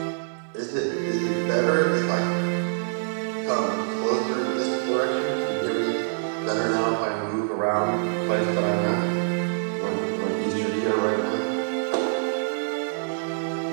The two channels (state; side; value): silent; left; digital silence